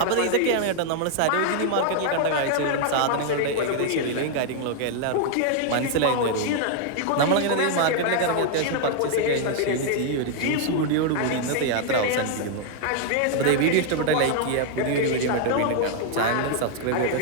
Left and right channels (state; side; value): different; both; correlation 0.00